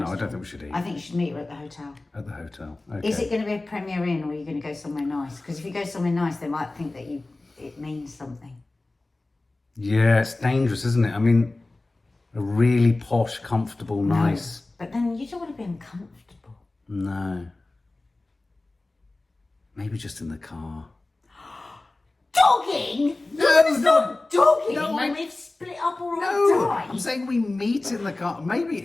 I restaurant. don't think we should eat. I think you should meet her at the hotel. At the hotel. Okay. Is it going to be a Premier Inn, or are you going to go somewhere nice? Because if you go somewhere nice, they might think that it means something. Yeah, it's dangerous, isn't it? I mean, a really posh, comfortable, nice. But then you don't want to be uncomfortable. No. Maybe just in the car. Dogging? No, It's not dogging No, when I- we've split up or No, I die. I'm saying we meet in the car. Maybe,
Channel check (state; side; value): quieter; right; 3.0 dB